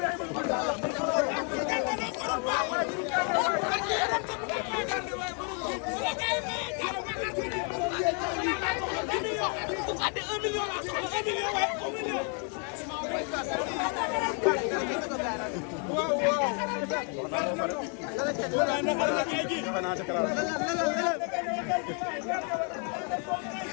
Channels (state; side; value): quieter; right; 40.0 dB